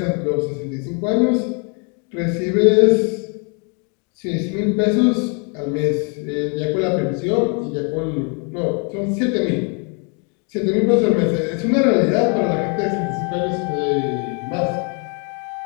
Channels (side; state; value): right; quieter; 36.9 dB